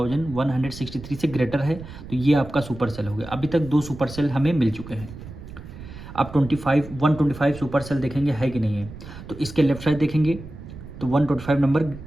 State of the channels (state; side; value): noise; right; rumble, 14 dB below the sound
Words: से ग्रेटर है, तो ये आपका सुपर सेल हो गया। अभी तक 2 सुपर सेल हमें मिल चुके हैं। अब 125 सुपर सेल देखेंगे है कि नहीं है। तो इसके लेफ्ट साइड देखेंगे तो 125 नंबर